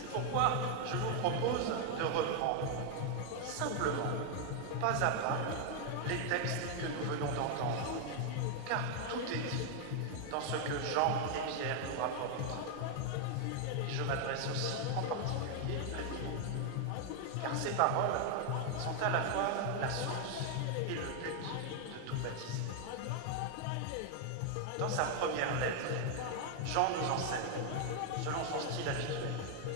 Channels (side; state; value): both; different; correlation 0.00